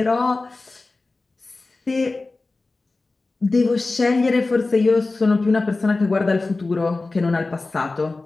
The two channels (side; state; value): right; quieter; 3.4 dB